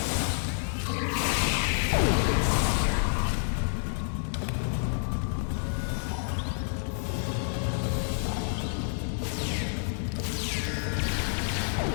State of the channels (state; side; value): silent; right; 59 dB below the other